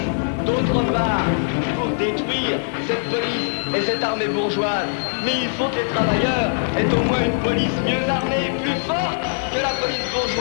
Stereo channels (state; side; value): silent; right; digital silence